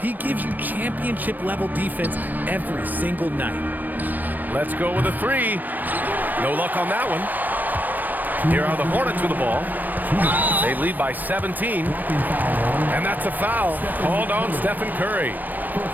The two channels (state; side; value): late; left; 0.088 ms